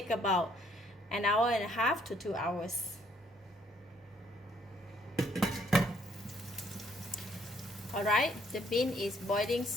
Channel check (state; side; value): normal; both; correlation 0.66